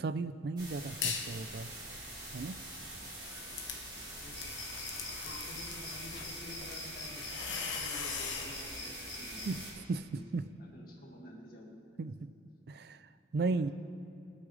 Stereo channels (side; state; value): both; normal; correlation 0.38